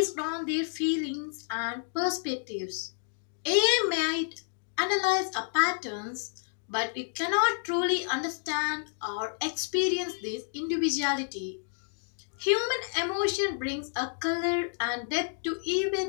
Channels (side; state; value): right; silent; 58 dB below the other